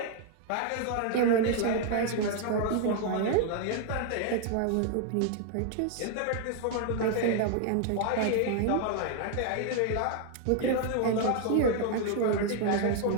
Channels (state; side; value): different; both; correlation 0.00